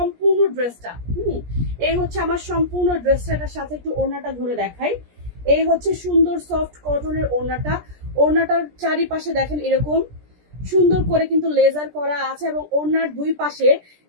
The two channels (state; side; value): late; left; 17 ms